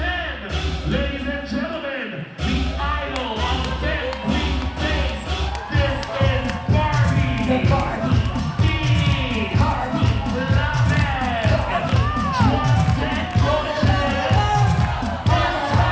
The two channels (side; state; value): both; identical; correlation 1.00